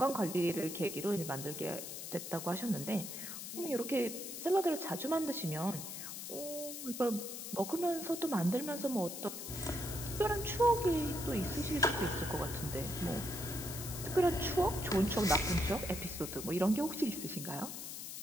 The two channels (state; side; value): noise; left; hiss, 8 dB below the sound